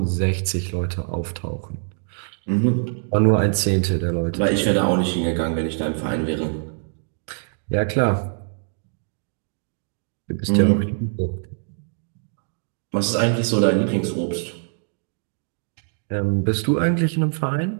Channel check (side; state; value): left; silent; 63 dB below the other